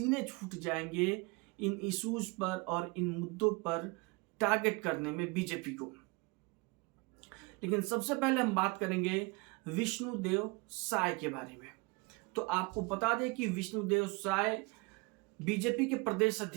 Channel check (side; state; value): left; quieter; 27.3 dB